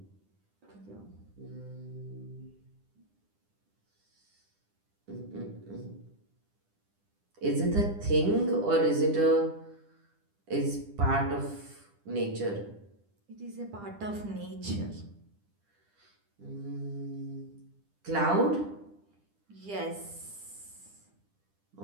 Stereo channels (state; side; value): late; left; 10 ms